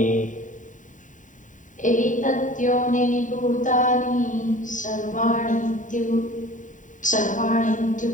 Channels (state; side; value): late; right; 0.37 ms